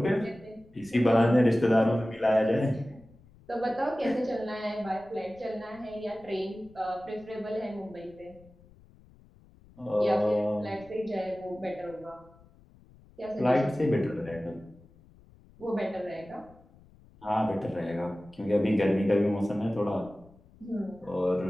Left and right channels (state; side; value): noise; left; rumble, 26 dB below the sound